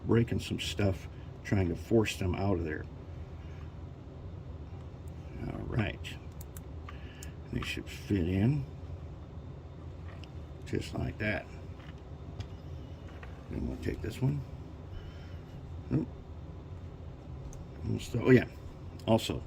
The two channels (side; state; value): both; identical; correlation 1.00